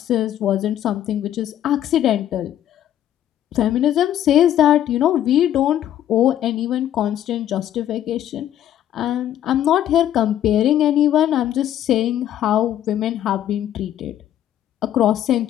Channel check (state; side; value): quieter; right; 11.4 dB